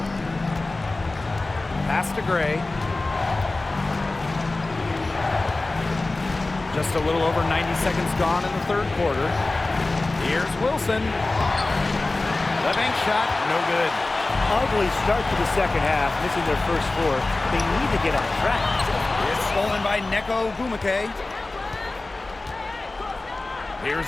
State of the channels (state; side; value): quieter; right; 3.1 dB